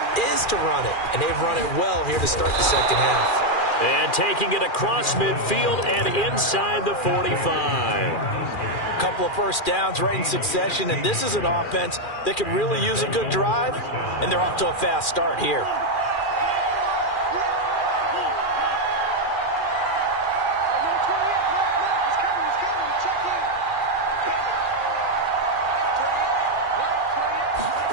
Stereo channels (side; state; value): right; late; 2.4 ms